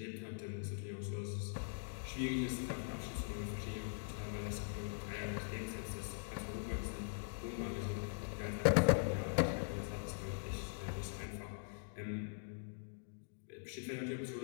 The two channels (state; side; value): silent; right; digital silence